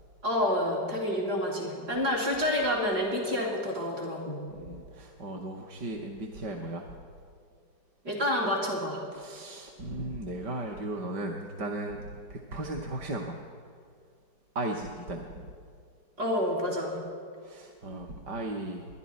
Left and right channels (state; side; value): late; left; 4.9 ms